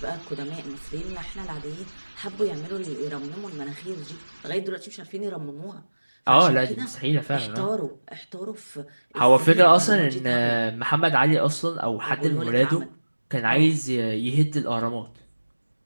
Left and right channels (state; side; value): inverted; both; correlation -1.00